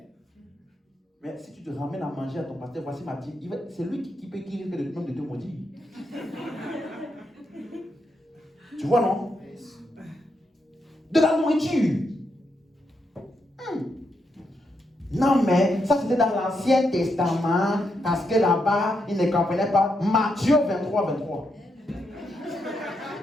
Mais si tu te ramènes à manger à ton pasteur, voici ma dîme, c'est lui qui risque de te maudire. Tu vois, non? De la nourriture. Non, mais ça c'était dans l'Ancien Testament, parce que là-bas, ils ne comprenaient pas. Matthieu 23.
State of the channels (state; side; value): normal; both; correlation 0.81